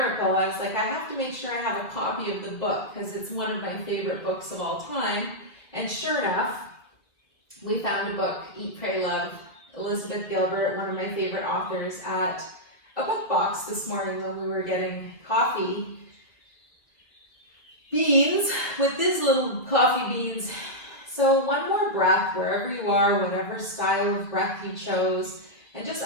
I was like, I have to make sure I have a copy of the book because it's one of my favorite books of all time. And sure enough, we found a book, Eat, Pray, Love, Elizabeth Gilbert, one of my favorite authors, at a book box this morning when we were getting coffee beans with these little coffee beans. So one more breath wherever you are, whatever style of breath you chose, and just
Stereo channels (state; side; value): late; right; 1.8 ms